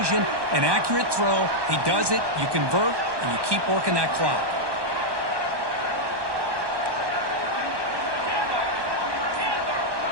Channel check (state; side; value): late; left; 1.2 ms